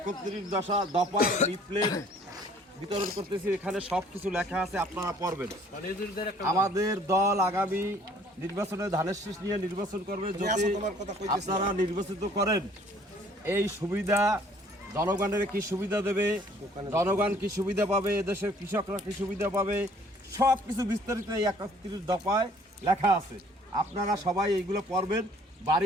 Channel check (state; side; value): normal; both; correlation 0.57